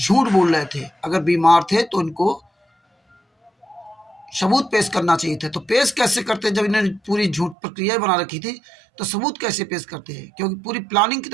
बोल रहे थे। अगर बीमार थे तो इनको सबूत पेश करना चाहिए थे। तो पेश कैसे करते? जब इन्होंने पूरी झूठ प्रक्रिया बना रखी थी तो सबूत कैसे पेश करते हैं? क्योंकि पूरी प्लानिंग के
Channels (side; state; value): left; drops out; at 7.6 s